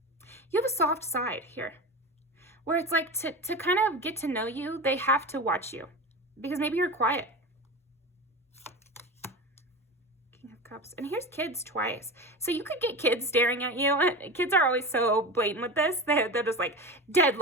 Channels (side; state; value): both; normal; correlation 0.27